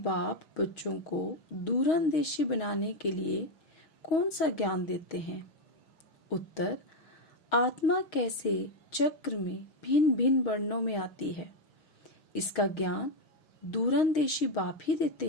बच्चों को दूरंदेशी बनाने के लिए कौन सा ज्ञान देते हैं? उत्तर, आत्मा कैसे चक्र में भिन्न भिन्न वर्णों में आती है, इसका ज्ञान दूरंदेशी बाप ही देते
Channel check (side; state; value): right; late; 6.3 ms